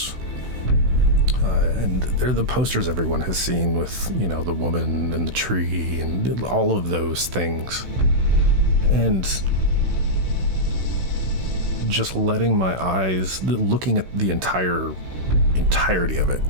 And they're the posters everyone has seen with, the woman and the tree and all of those things. And just letting my eyes, looking at the entirety of it,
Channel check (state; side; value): late; left; 16 ms